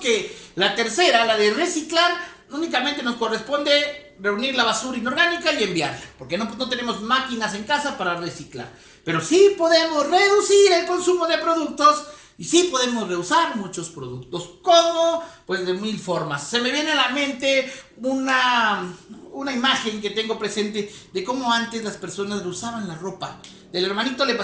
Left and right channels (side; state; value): both; identical; correlation 1.00